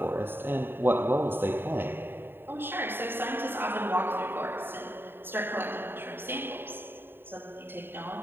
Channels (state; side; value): late; left; 0.10 ms